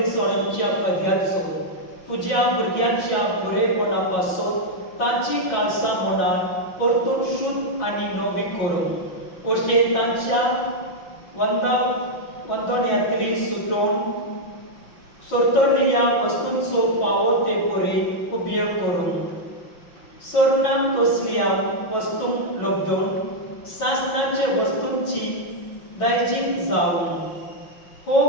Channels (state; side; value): late; right; 5.8 ms